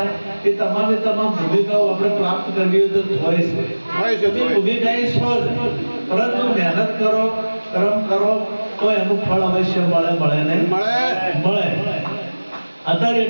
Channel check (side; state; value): both; inverted; correlation -1.00